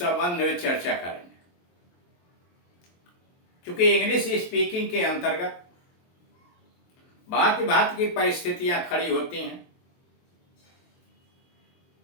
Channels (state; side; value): late; right; 23 ms